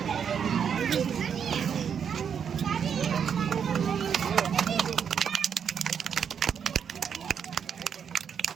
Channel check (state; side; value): quieter; left; 7.5 dB